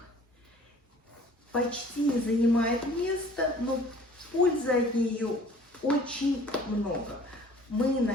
почти не занимает места, но пользы от нее очень много. Мы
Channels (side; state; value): both; normal; correlation 0.51